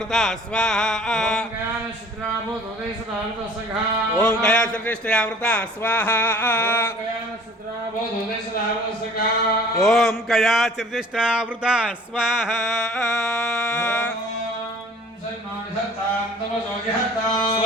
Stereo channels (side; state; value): both; normal; correlation 0.50